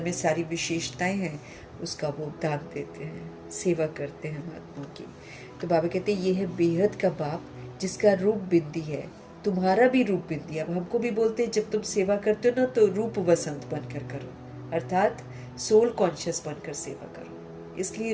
में सारी विशेषताएं हैं उसका वो दान देते हैं, सेवा करते हैं महात्मा की। तो बाबा कहते हैं ये है बेहद का बाप जिसका रूप बिंदी है। तुम्हारा भी रूप बिंदी है। अब हमको भी बोलते हैं जब तुम सेवा करते हो ना तो रूप वसंत बनकर करो, अर्थात सोल कॉन्शियस बनकर सेवा करो, इसलिए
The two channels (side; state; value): both; identical; correlation 1.00